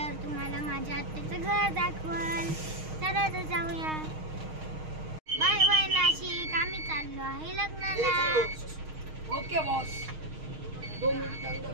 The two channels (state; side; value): late; left; 6.4 ms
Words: तुम्हाला माझ्या आत्याचं घर दाखवल। चला तर जाऊया। Bye bye Nashik. आम्ही चाललो आहे लग्नाला। Okay boss. 2